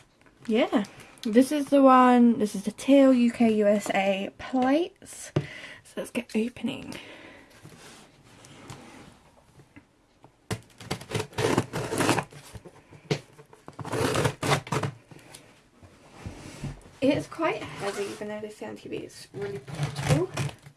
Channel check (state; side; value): identical; both; correlation 1.00